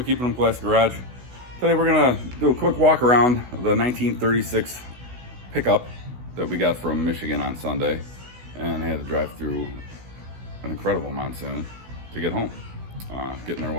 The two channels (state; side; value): late; left; 16 ms